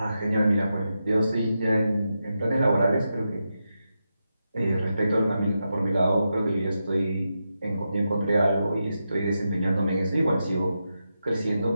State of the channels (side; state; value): both; inverted; correlation -0.88